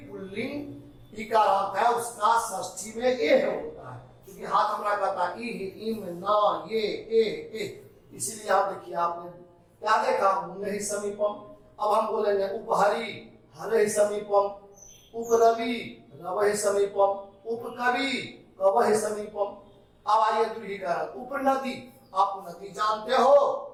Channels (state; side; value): identical; both; correlation 1.00